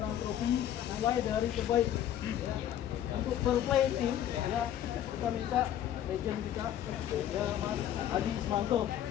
trofi mulai dari terbaik ya. Untuk fair play team ya kita minta legend kita ya Mas Adi Ismanto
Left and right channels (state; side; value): quieter; right; 11.0 dB